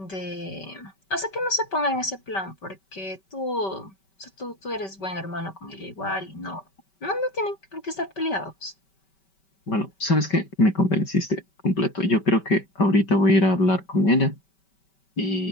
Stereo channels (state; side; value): late; right; 5.2 ms